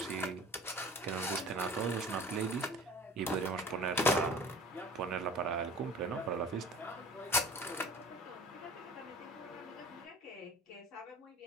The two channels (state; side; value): normal; both; correlation 0.44